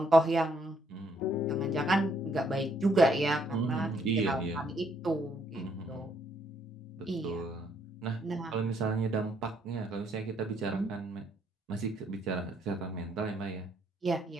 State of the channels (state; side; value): normal; both; correlation 0.70